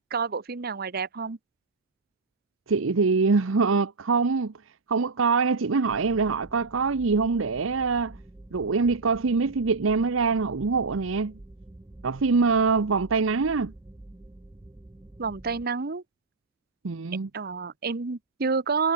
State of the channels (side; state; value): left; quieter; 4.2 dB